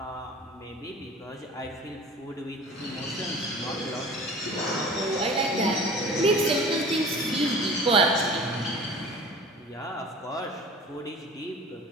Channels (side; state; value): both; normal; correlation 0.41